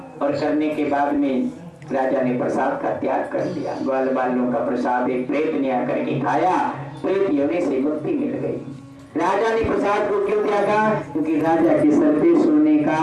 और करने के बाद में राजा ने प्रसाद का त्याग कर दिया। ग्वाल बालों का प्रसाद एक प्रेत ने आकर के खाया, प्रेत योनि से मुक्ति मिल गई। राजा ने प्रसाद को क्यों त्यागा? क्योंकि राजा के सर पे सोने का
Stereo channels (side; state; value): both; identical; correlation 1.00